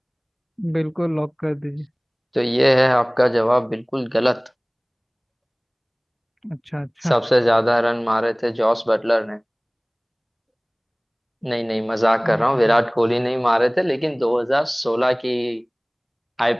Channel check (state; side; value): identical; both; correlation 1.00